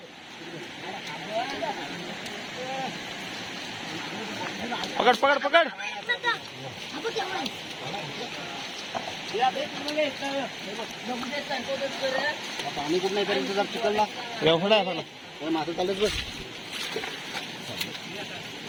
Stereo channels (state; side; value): identical; both; correlation 1.00